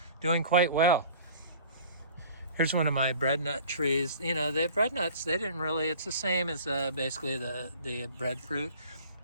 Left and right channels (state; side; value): inverted; both; correlation -0.46